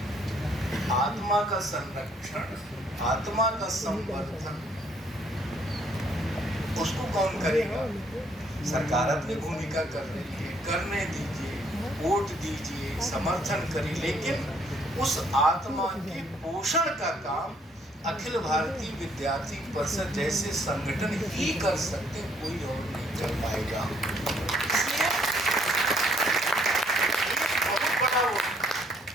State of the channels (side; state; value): both; normal; correlation 0.66